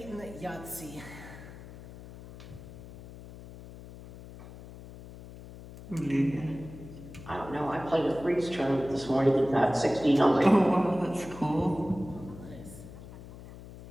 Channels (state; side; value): noise; left; hum, 15 dB below the sound